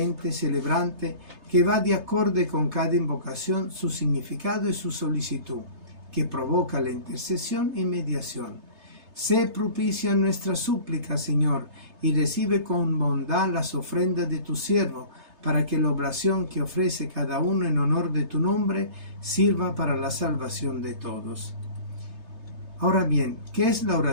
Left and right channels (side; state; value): left; late; 3.3 ms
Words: celebrante, que va de acorde con cada invocación, su significado y su solicitud, que provoca la intercesión y mediación. Sé propicio a nuestra súplica, Señor, y recibe con bondad las ofrendas de tu siervo, para que la oblación que ofrece cada uno en honor de tu nombre sirva para la salvación de todos. Ahora bien, ¿qué es la